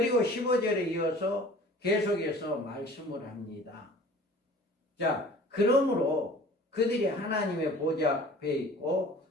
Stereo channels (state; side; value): normal; both; correlation 0.46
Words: 15절에 이어서 계속해서 말씀을 합니다. 자, 그러므로 그들이 하나님의 보좌 앞에 있고